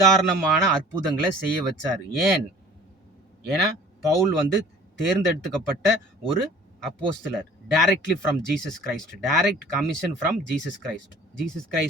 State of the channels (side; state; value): both; normal; correlation 0.48